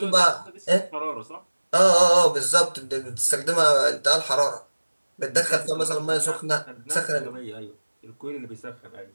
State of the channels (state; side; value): inverted; both; correlation -1.00